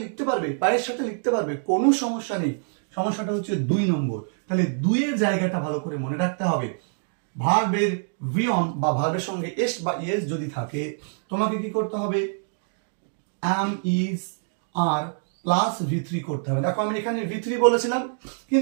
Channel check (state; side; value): silent; left; digital silence